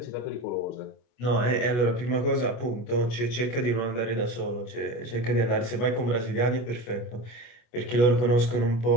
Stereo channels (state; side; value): late; right; 25 ms